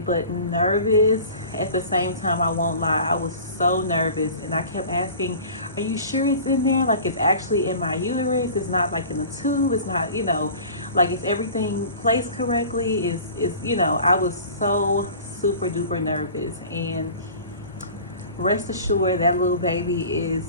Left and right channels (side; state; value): both; inverted; correlation -0.41